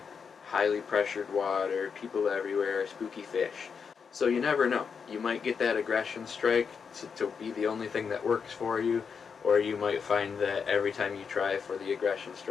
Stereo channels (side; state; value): right; quieter; 6.2 dB